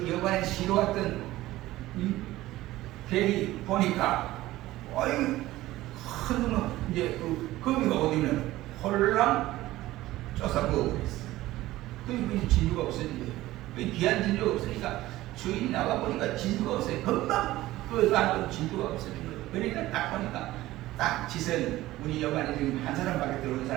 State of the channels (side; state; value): left; quieter; 16.5 dB